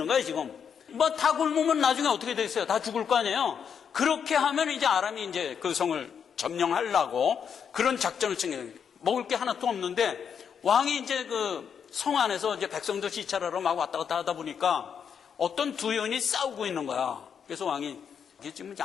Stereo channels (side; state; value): right; quieter; 7.3 dB